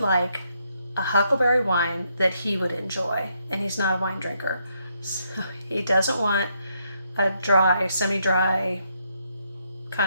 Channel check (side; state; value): both; inverted; correlation -0.77